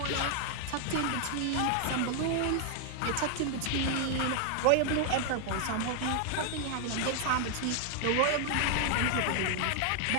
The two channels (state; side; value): different; both; correlation 0.00